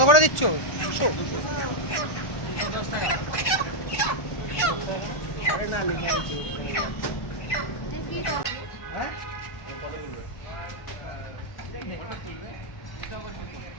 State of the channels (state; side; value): late; right; 1.1 ms